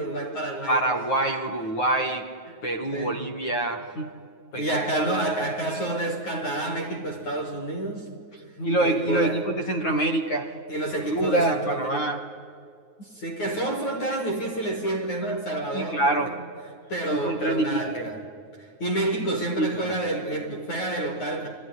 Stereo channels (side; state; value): right; late; 9.4 ms